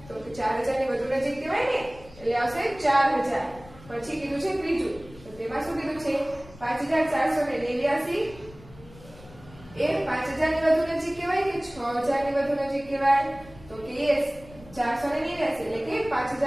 તો કે 4000 ની વધુ નજીક કહેવાય ને, એટલે આવશે 4000. પછી કીધું છે ત્રીજું, તો તેમાં શું કીધું છે 5489 એ 5000 ની વધુ નજીક કહેવાય કે 6000 ની વધુ નજીક કહેવાય? તો કે યસ, 489 એટલે કે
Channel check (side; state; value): left; noise; rumble, 20 dB below the sound